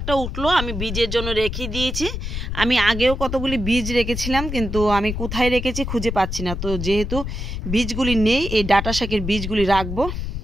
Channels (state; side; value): noise; left; rumble, 5 dB below the sound